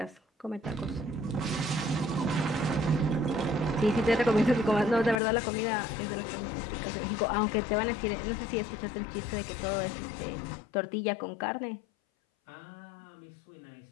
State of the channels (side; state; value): right; drops out; at 5.2 s